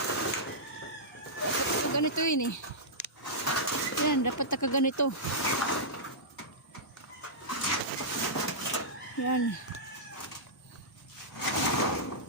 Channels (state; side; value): normal; both; correlation -0.12